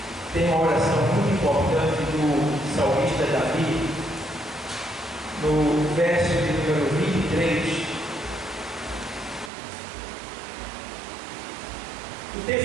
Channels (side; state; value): left; drops out; at 9.5 s